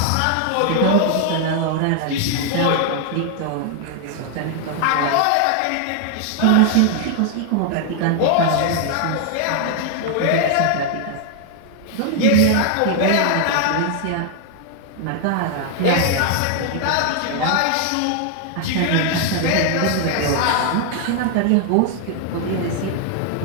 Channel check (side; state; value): both; different; correlation 0.00